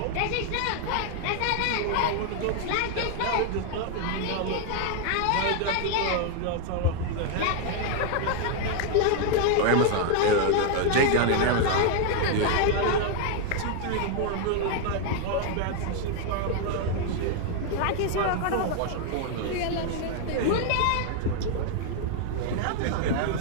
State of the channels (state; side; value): different; both; correlation 0.00